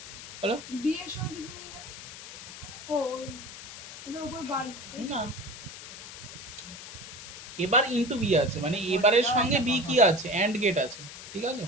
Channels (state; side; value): noise; left; hiss, 13 dB below the sound